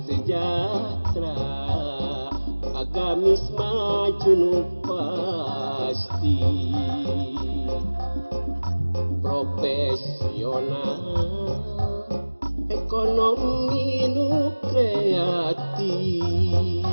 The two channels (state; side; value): inverted; both; correlation -1.00